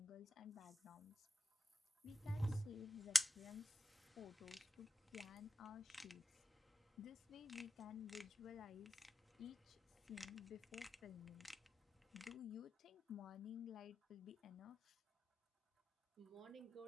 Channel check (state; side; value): normal; both; correlation 0.93